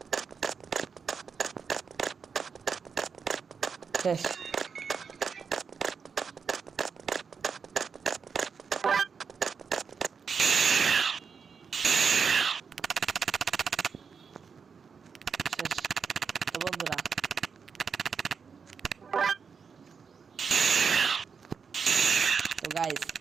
শেষ। তো বন্ধুরা গাইস,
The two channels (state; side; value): quieter; left; 5.9 dB